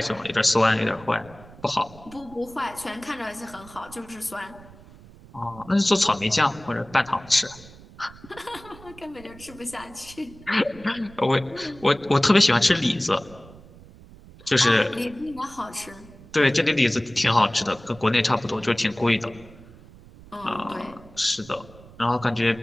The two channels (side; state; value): right; noise; rumble, 21 dB below the sound